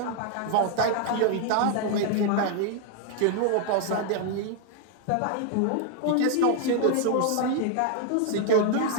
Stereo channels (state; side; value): different; both; correlation 0.00